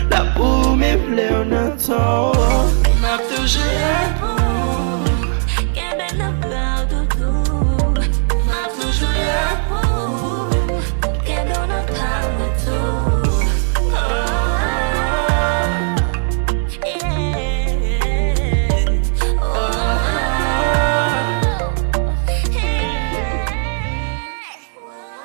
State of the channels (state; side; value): silent; left; digital silence